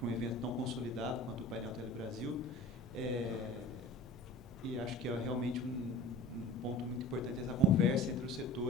um evento tão consolidado quanto o painel Telebrasil, e acho que é realmente um ponto muito importante essa conversa entre os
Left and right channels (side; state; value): both; normal; correlation 0.39